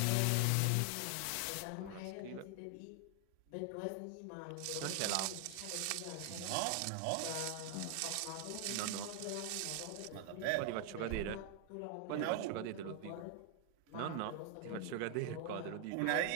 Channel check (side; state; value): both; different; correlation 0.00